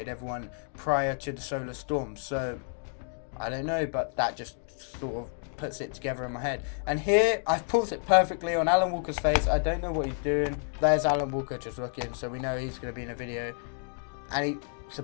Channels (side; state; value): right; silent; 57 dB below the other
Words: everyone prior to the solar storm. So I don't know, but that just sort of puts it together in my head. And here I've pulled it perfectly on Alan Walker's face. I don't know what he's doing. There's Alan Walker just looking, so we know he's going to be in a video, and he's